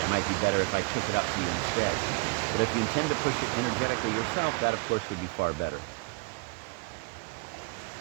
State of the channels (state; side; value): quieter; left; 30.5 dB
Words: it might be better if I took it up for you instead. But if you intend to push it energetically yourself, that of course would be far better.